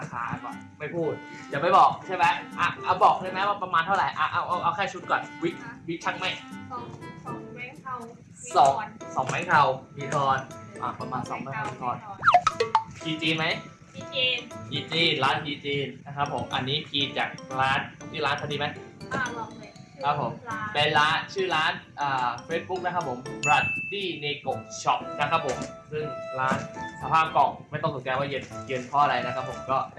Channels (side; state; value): both; identical; correlation 1.00